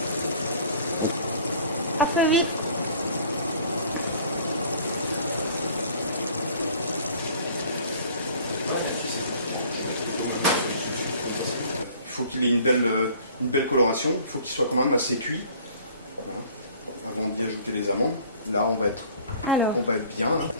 Après, oui. Il faut qu'il ait une belle coloration, il faut qu'il soit quand même assez cuit, voilà, avant d'y ajouter les amandes. Là, on va être bien. Hein.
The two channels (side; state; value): both; inverted; correlation -0.51